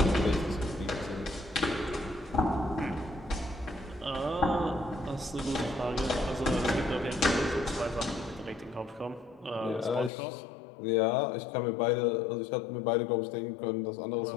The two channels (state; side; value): drops out; right; at 10.1 s